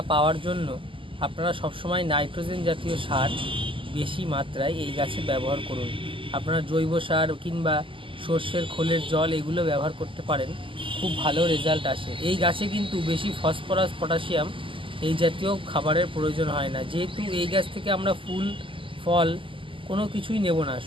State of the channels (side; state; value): left; late; 0.25 ms